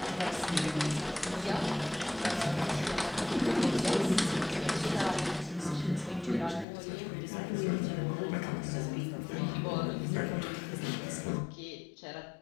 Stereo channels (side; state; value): right; drops out; at 6.7 s